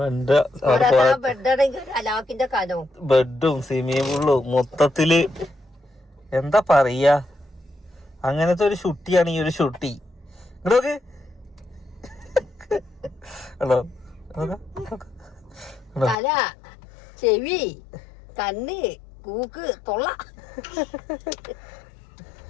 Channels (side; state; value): right; drops out; at 16.2 s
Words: ബെഡാണെങ്കിൽ അലാക്കിന്റെ കനോ ബെഡും സ്വിമ്മിംഗ് പൂളും മൊത്തത്തില് എന്താ പറയാ. അങ്ങനത്തെ ഒരു ഷുട്ടിയാണ് ഈ ഒരു ഷുട്ടി. ഇങ്ങോട്ട് ഹലോ. തല, ചെവി, കണ്ണ്, കൂക്ക്, തൊള്ള.